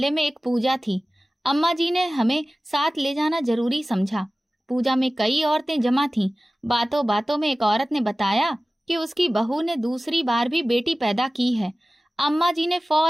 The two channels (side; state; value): both; normal; correlation 0.97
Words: में एक पूजा थी। अम्मा जी ने हमें साथ ले जाना जरूरी समझा। पूजा में कई औरतें जमा थीं। बातों बातों में एक औरत ने बताया कि उसकी बहू ने दूसरी बार भी बेटी पैदा की है। अम्मा जी ने